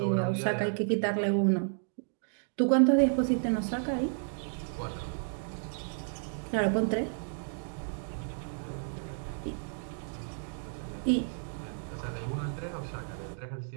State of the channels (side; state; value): left; silent; digital silence